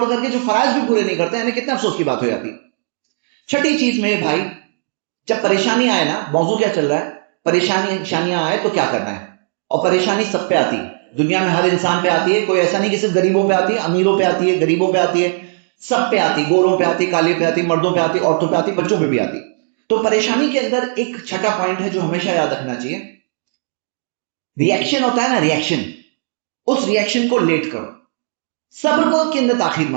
کر کے جو فرائض بھی پورے نہیں کرتے ہیں، کتنے افسوس کی بات ہو جاتی. چھٹی چیز میں بھائی، جب پریشانی آئے نا، موضوع کیا چل رہا ہے، پریشانیاں آئے تو کیا کرنا ہے. اور پریشانی سب پہ آتی ہے، دنیا میں ہر انسان پہ آتی ہے، کوئی ایسا نہیں کہ صرف غریبوں پہ آتی ہے، امیروں پہ آتی ہے، غریبوں پہ آتی ہے، سب پہ آتی، گوروں پہ آتی، کالے پہ آتی، مردوں پہ آتی، عورتوں پہ آتی، بچوں پہ بھی آتی. تو پریشانی کے اندر ایک چھٹا پوائنٹ ہے جو ہمیشہ یاد رکھنا چاہیے، ریئیکشن ہوتا ہے نا، ریئیکشن، اس ریئیکشن کو لیٹ کرو، صبر کو کے اندر تاخیر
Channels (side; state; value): left; silent; 66 dB below the other